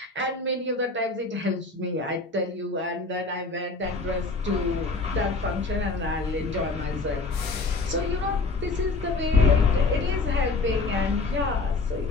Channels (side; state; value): right; quieter; 3.7 dB